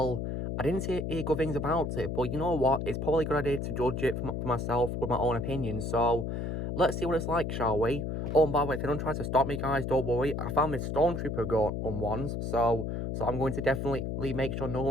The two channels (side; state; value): left; noise; hum, 3 dB below the sound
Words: I didn't hear good things about it, but you know what? It's probably a good idea to judge it for myself with my own opinion. So, let's see what it's like, shall we? Oh, and by the way, if anyone tries to stop me, guys, don't worry. I found this Stormtrooper gun on once, so I'm going to definitely make sure no